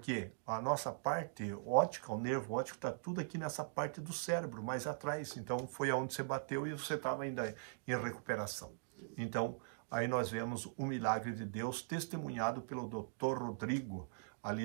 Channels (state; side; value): silent; left; digital silence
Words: a nossa parte óptica, o nervo óptico, está tudo aqui nessa parte do cérebro, mais atrás. Então, foi aonde você bateu e você estava ainda em recuperação. Então, aí nós vemos o milagre de Deus testemunhado pelo Dr. Rodrigo,